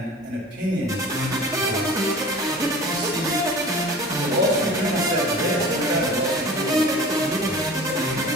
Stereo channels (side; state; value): both; normal; correlation 0.40